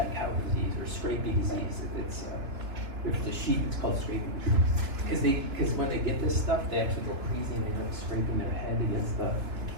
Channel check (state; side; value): late; left; 3.5 ms